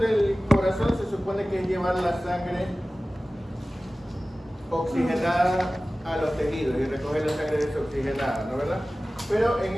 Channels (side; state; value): both; normal; correlation 0.97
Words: corazón se supone que es llevar la sangre oxigenada a los tejidos y recoger la sangre desoxigenada, ¿no verdad? Pero en